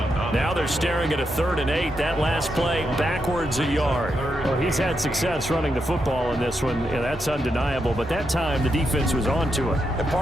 Now they're staring at a 3rd and 8. That last play backwards a yard. Well, he's had success running the football in this one. Yeah, that's undeniable. But that time, the defense was on to it. And,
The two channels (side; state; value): both; normal; correlation 0.83